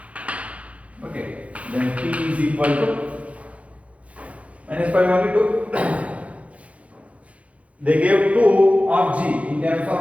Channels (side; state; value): left; late; 0.065 ms